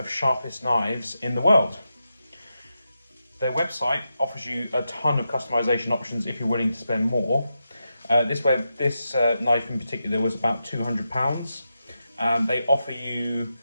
sharpest knives in the world. Their website offers you a ton of customisation options if you're willing to spend more. This knife in particular was about £200. They offer you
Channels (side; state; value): both; inverted; correlation -0.88